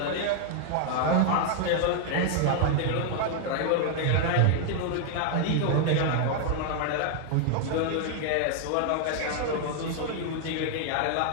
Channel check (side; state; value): both; different; correlation 0.00